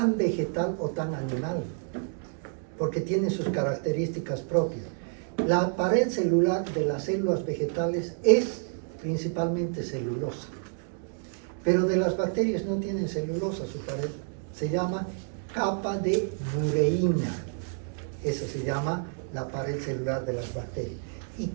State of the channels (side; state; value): left; silent; 59 dB below the other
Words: vegetal o tan animal, porque tienen sus características propias. La pared celular de las células vegetales es principalmente celulosa, pero de las bacterias no tienen celulosa su pared, se llama capa de mureína. Eso se llama la pared celular de las bacterias. ¿Y